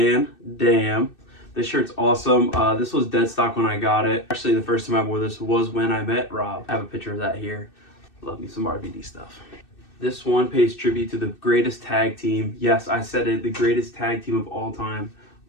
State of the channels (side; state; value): right; late; 2.6 ms